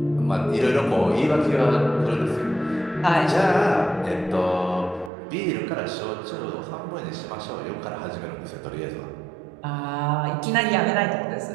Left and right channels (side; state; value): left; drops out; at 5.1 s